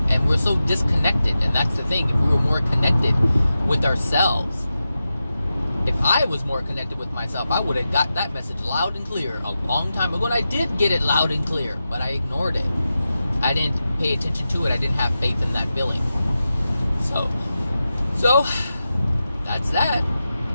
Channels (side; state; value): both; inverted; correlation -0.91